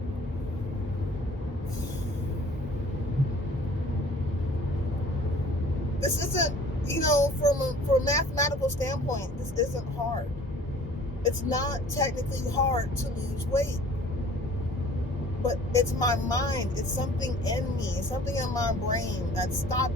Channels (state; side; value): normal; both; correlation 0.50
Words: this isn't, you know, from a mathematical standpoint, this isn't hard. It's not technically hard to lose weight, but it's my mind. It's something in me. It's something in my brain that's